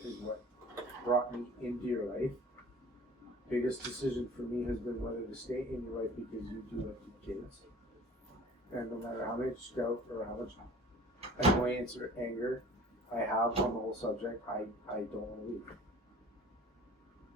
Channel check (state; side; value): normal; both; correlation 0.46